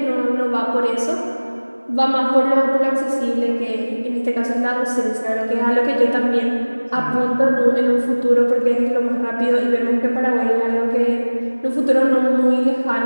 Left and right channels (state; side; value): inverted; both; correlation -1.00